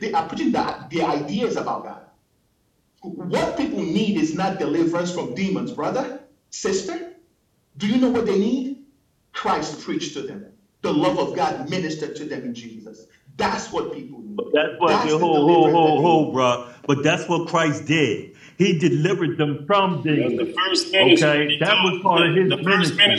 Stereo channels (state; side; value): identical; both; correlation 1.00